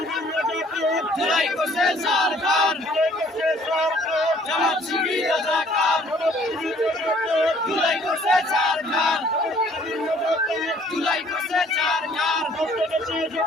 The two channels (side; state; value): both; normal; correlation 0.58